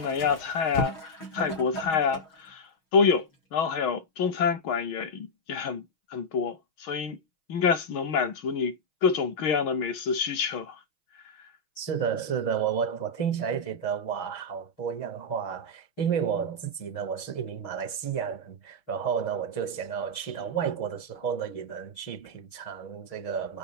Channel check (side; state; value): right; late; 6.3 ms